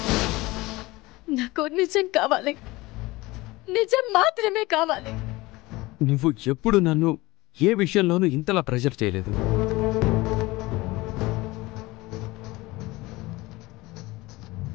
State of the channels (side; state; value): right; quieter; 20.9 dB